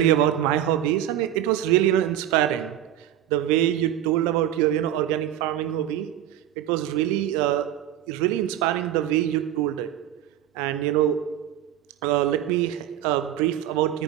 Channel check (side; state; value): left; quieter; 11.7 dB